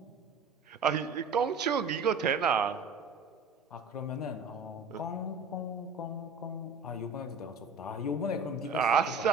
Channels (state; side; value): quieter; left; 4.1 dB